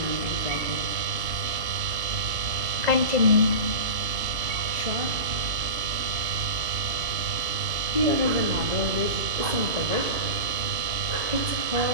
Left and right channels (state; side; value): late; left; 3.0 ms